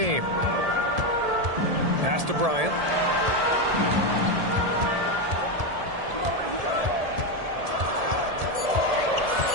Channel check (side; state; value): left; late; 1.7 ms